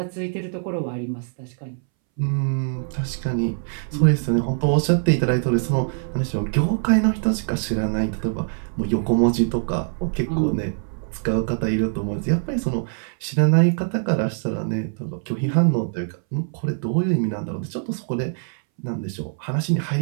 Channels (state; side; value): silent; left; 62 dB below the other